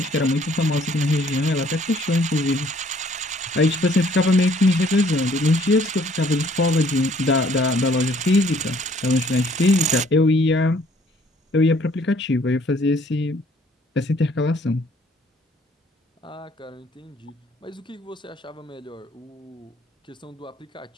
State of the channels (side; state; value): both; normal; correlation 0.61